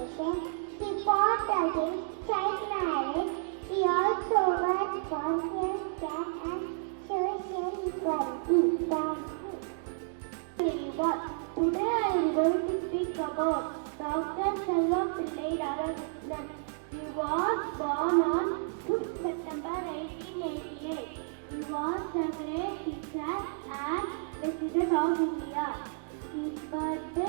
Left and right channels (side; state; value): left; silent; digital silence